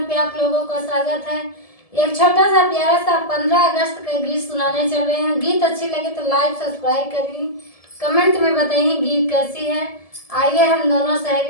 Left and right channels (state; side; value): late; right; 1.7 ms